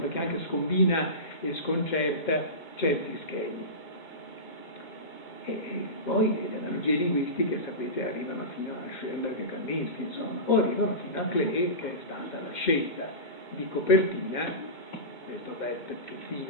perché anche scombina e sconcerta certi schemi. E poi le analogie linguistiche, sapete, arrivano fino a Schoenberg e Kandinsky, insomma, o arrivano fino a Klee, che è stata la scelta di copertina, questo bel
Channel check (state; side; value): late; right; 2.2 ms